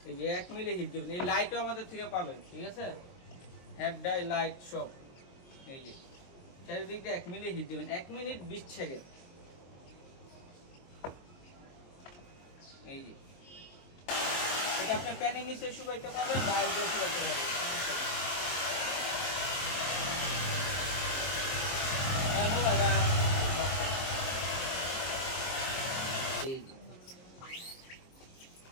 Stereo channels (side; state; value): right; late; 22 ms